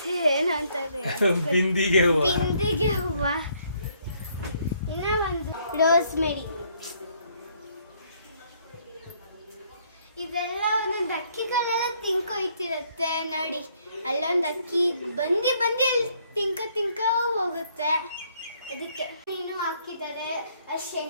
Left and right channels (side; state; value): both; inverted; correlation -0.67